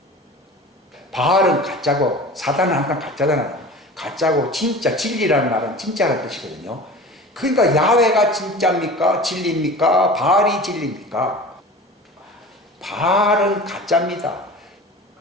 바알은 가짜고 사단은 항상 가짜잖아요. 가짜고 진짜 진리라는 말은 진짜라는 뜻이거든요. 그러니까 야훼가 진짜입니까? 진리입니까? 바알이 진리입니까? 바알은 가짜입니다.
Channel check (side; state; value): both; normal; correlation 0.38